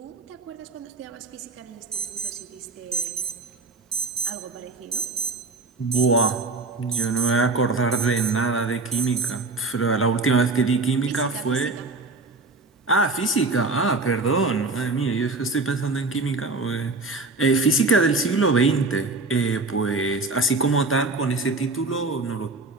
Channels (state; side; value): quieter; left; 3.5 dB